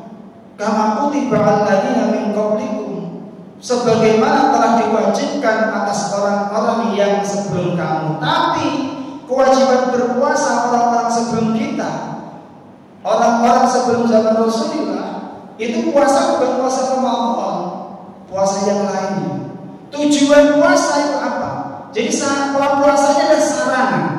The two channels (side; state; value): both; identical; correlation 1.00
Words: kama kutiba alladzina min qablikum, sebagaimana telah diwajibkan atas orang-orang yang sebelum kamu. Tapi kewajiban berpuasa orang-orang sebelum kita, orang-orang sebelum zaman Rasulullah, itu puasa bukan puasa Ramadan, puasa yang lainnya. Tujuan puasa itu apa? Jadi kalau puasanya ada